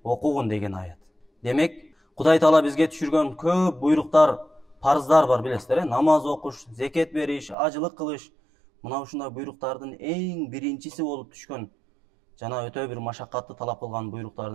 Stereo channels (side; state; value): left; drops out; at 7.6 s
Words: окугун деген аят. Демек, Кудай Таала бизге түшүргөн көп буйруктар, парыздар бар билесиздер, намаз окуш, зекет бериш, ажылык кылыш. Мына ушундай буйруктардын эң биринчиси болуп түшкөн жана өтө бир машакатты талап кылган